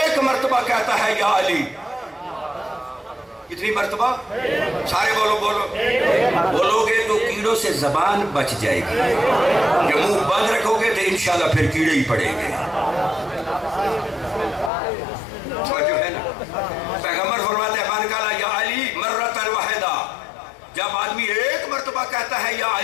مرتبہ کہتا ہے یا علی, کتنی مرتبہ؟ سارے بولو بولو. بولو گے تو کیڑوں سے زبان بچ جائے گی, جب منہ بند رکھو گے تو انشاءاللہ پھر کیڑے ہی پڑیں گے. جو ہے نا, پیغمبر فرماتے ہیں من قال یا علی مرۃ واحدہ, جب آدمی ایک مرتبہ کہتا ہے یا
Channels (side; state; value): right; drops out; at 14.7 s